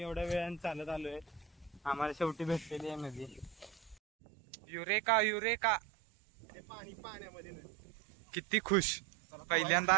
एवढ्या वेळाने चालत आलोय. आम्हाला शेवटी भेटलेली आहे नदी. Eureka eureka. ते पाणी पाण्यामध्ये नाही. किती खुश. पहिल्यांदा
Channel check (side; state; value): left; drops out; at 4.0 s